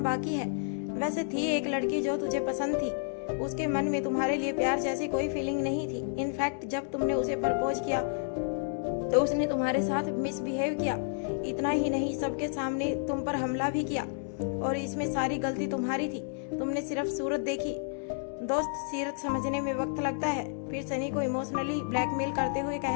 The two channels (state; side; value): silent; right; digital silence